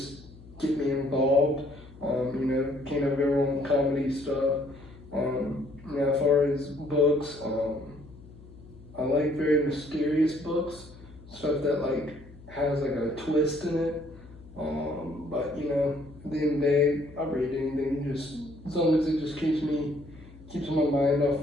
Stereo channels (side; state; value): left; noise; hum, 20 dB below the sound